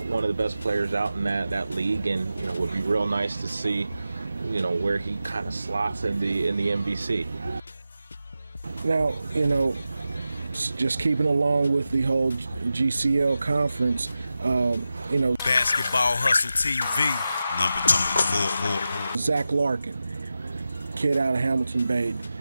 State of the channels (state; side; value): inverted; both; correlation -0.92